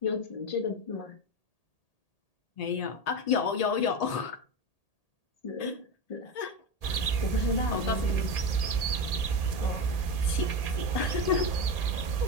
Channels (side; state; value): right; late; 1.8 ms